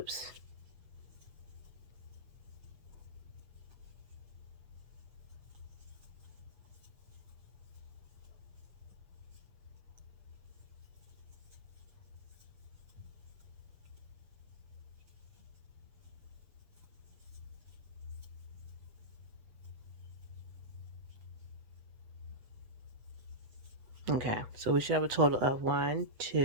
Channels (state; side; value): late; left; 7.9 ms